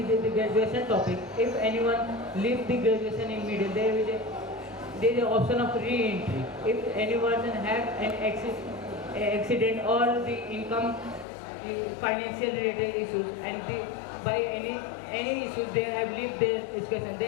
graduation topic. If anyone leaves the graduation in middle, there is an option of re-entry. If anyone have an accident or the income financial related issues, and by any issues they have lived their education,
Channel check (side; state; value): right; drops out; at 11.2 s